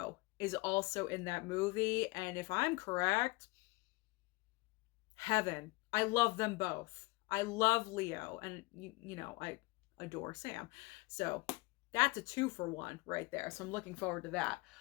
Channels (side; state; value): right; quieter; 24.3 dB